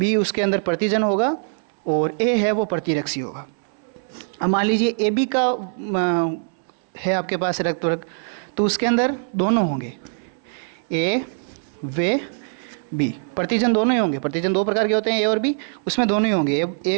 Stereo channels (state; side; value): silent; left; 64 dB below the other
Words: उसके अंदर प्रतिजन होगा और ए है वो प्रतिरक्षी होगा। अब मान लीजिए ए बी का है आपके पास रक्त वर्ग, तो उसके अंदर दोनों होंगे, ए व बी, प्रतिजन दोनों ही होंगे। प्रतिजन 2 प्रकार के होते हैं, ए और बी, उसमें दोनों ही होंगे।